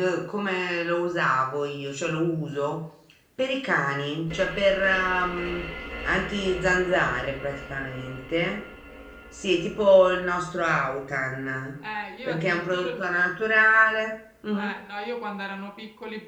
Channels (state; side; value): identical; both; correlation 1.00